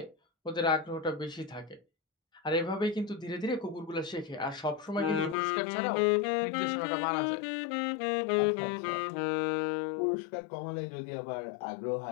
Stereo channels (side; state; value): right; drops out; at 5.4 s